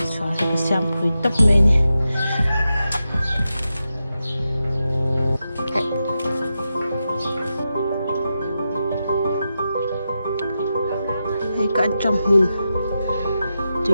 xóa cái xem quỷ tóc này cái trong hồn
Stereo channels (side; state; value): both; inverted; correlation -0.89